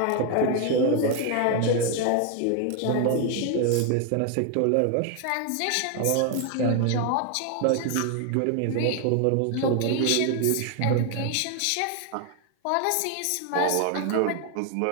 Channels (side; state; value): both; different; correlation 0.01